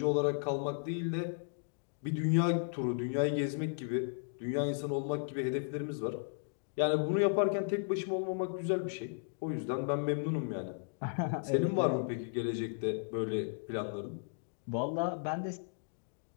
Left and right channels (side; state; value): right; silent; digital silence